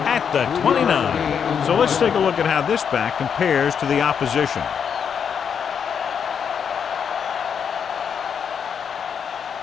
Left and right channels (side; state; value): right; quieter; 7.3 dB